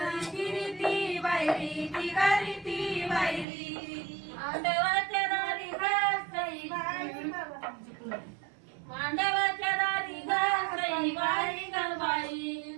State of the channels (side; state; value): left; drops out; at 3.5 s